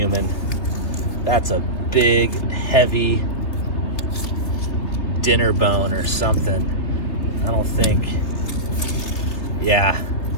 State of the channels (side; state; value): right; late; 3.1 ms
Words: That's a big, heavy dinner bone or something. I don't think. Yeah,